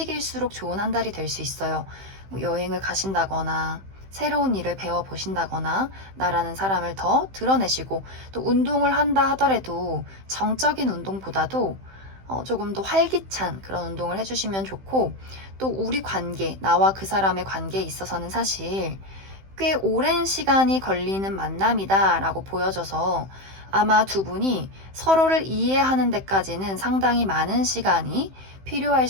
좋은 한 달이 될 수 있어요. 뭐 여행을 가신다거나 새로운 일을 배워보신다거나 나라는 사람을 더 드러내시고, 또 운동을 한다 하더라도 정적인 운동보다도 조금 더 활기찬 그런 운동을 해주시면 좋고, 또 우리 관계, 나와 그 사람의 관계에 있어서는 사실 꽤 오랜 시간이 걸리는 만남이다 라고 보여져서 아마 두 분이 서로를 이해하는 데까지는 상당히 많은 시간이 필요할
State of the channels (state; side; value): late; left; 15 ms